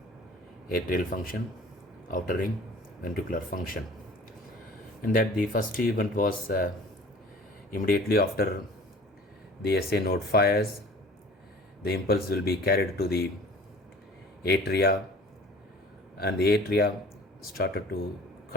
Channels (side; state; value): both; normal; correlation 0.47